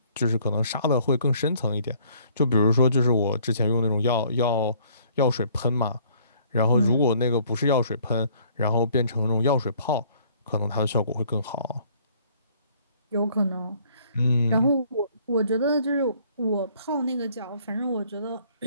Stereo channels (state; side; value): inverted; both; correlation -0.60